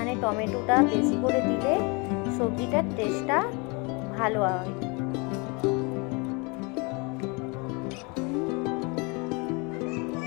টমেটোটা বেশি করে দিলে সবজিটার টেস্টটা ভালো হয়।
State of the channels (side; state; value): right; quieter; 30.0 dB